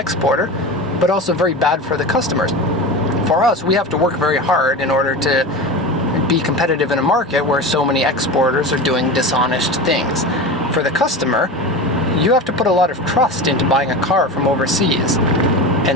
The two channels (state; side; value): normal; both; correlation 0.27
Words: but also very bad for the customers. For us, we have to work very hard in order to be competitive in a market where so many exporters are doing dishonest things. For the customer, you have to put a lot of trust into buying a car from overseas.